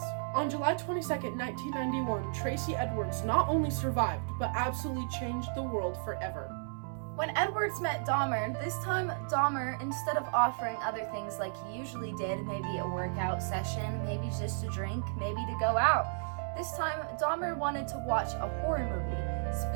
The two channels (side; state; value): left; silent; 56 dB below the other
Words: On July 22nd, 1991, Tracy Edwards not only survived, but absolutely changed the world forever. When Edwards met Dahmer, this time Dahmer, instead of offering other things like he usually did, maybe a workout session, maybe just a drink, maybe to go out, this time Dahmer wanted to watch a horror movie,